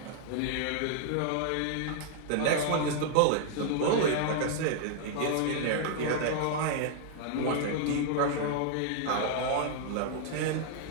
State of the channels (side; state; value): both; different; correlation 0.00